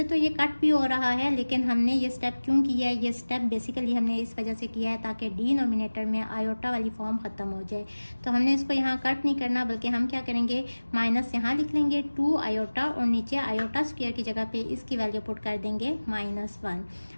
तो ये कट भी हो रहा है, लेकिन हमने ये स्टेप क्यों किया है, ये स्टेप बेसिकली हमने इस वजह से किया है ताकि डिनोमिनेटर में आयोटा वाली फॉर्म ख़त्म हो जाए। तो हमने इसको यहाँ कट नहीं करना, बल्कि हम क्या करेंगे, माइनस यहाँ लिख लेंगे 2 आयोटा और नीचे आयोटा स्क्वायर की जगह पे इसकी वैल्यू पुट कर देंगे -1।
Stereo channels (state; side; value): inverted; both; correlation -1.00